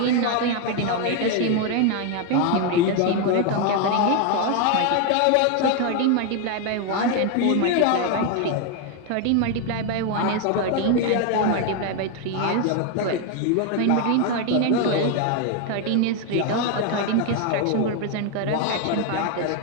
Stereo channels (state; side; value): different; both; correlation 0.01